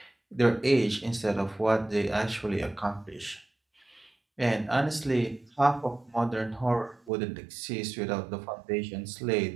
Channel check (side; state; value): left; drops out; at 7.1 s